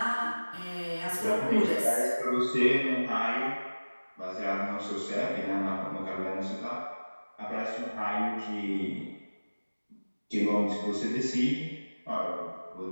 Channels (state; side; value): inverted; both; correlation -1.00